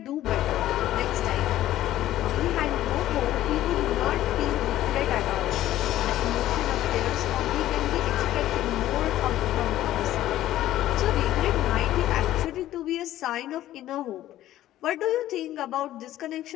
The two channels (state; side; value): quieter; right; 13.8 dB